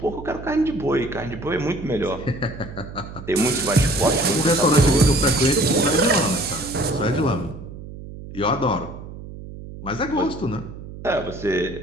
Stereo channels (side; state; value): right; noise; hum, 13 dB below the sound